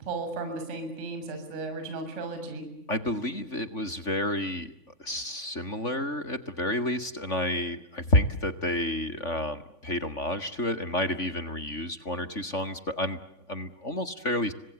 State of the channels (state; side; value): late; right; 3.5 ms